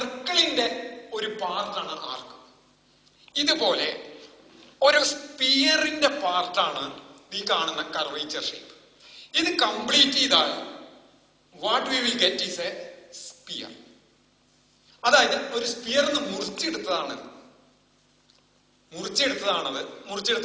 ഒരു പാർട്ടാണ് ആർക്ക്. ഇതുപോലെ ഒരു സ്പിയറിന്റെ പാർട്ടാണ് ഈ കാണുന്ന കർവേച്ചർ ഷേപ്പ്. ഇത് കംപ്ലീറ്റ് ചെയ്താൽ what we will get is a sphere. അതായത് ഒരു സ്പിയറിന്ന് മുറിച്ചെടുത്തതാണത്.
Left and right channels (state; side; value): identical; both; correlation 1.00